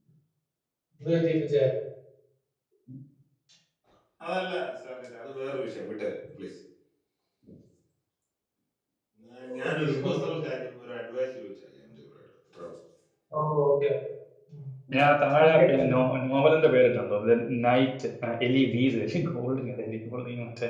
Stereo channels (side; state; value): both; identical; correlation 1.00